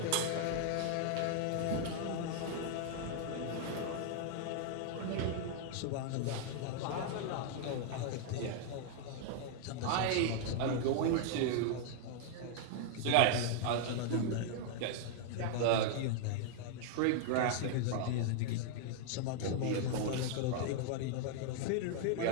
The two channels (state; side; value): different; both; correlation 0.00